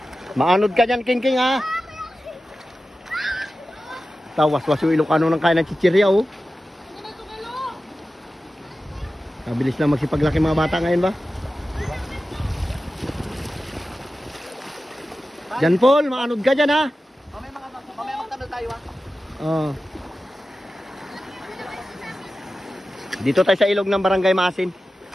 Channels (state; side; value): normal; both; correlation 0.94